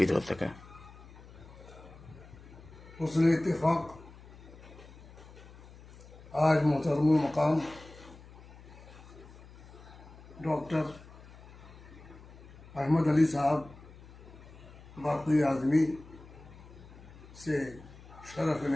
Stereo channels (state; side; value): noise; left; hum, 19 dB below the sound